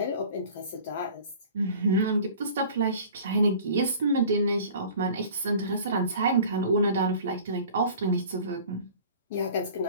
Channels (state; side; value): inverted; both; correlation -0.45